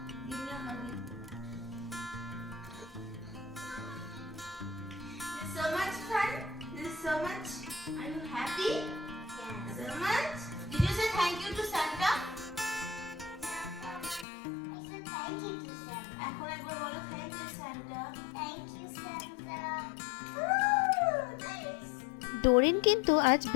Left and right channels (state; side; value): drops out; right; at 14.2 s